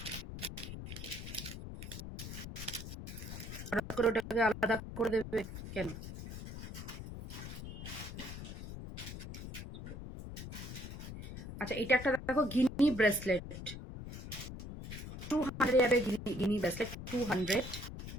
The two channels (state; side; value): noise; left; rumble, 9 dB below the sound